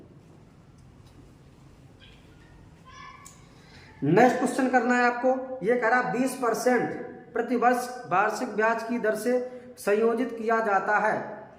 नेक्स्ट क्वेश्चन करना है आपको। ये कह रहा 20% प्रतिवर्ष वार्षिक ब्याज की दर से संयोजित किया जाता है,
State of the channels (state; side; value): identical; both; correlation 1.00